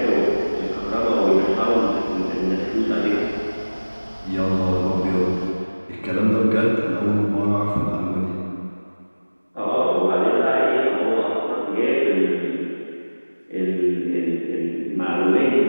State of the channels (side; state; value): both; inverted; correlation -1.00